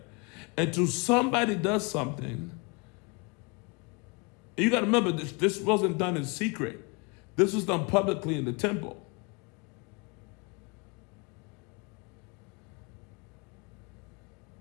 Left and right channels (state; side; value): quieter; right; 29.7 dB